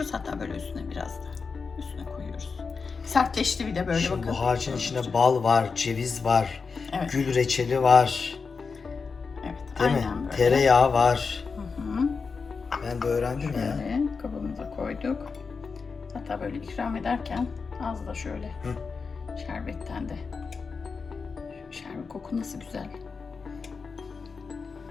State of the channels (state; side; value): quieter; right; 5.0 dB